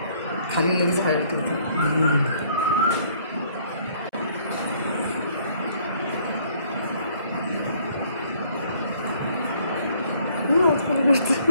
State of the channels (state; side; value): inverted; both; correlation -0.62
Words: खाली लगेच हळद ठेवते.